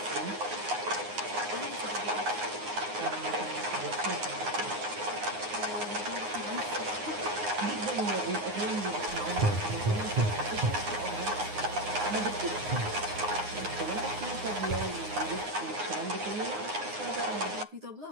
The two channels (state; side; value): late; left; 9.6 ms